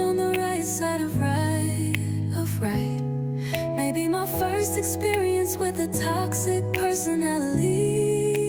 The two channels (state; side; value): identical; both; correlation 1.00